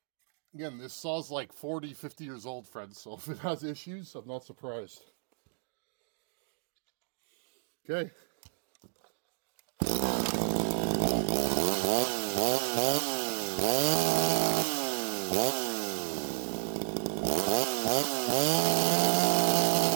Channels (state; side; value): silent; left; digital silence